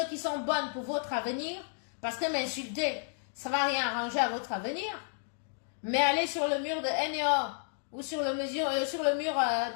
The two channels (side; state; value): right; silent; 56 dB below the other